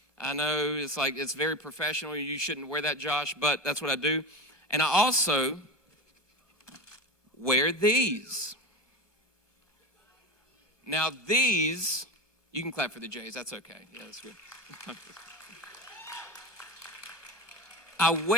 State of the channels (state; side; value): late; right; 1.5 ms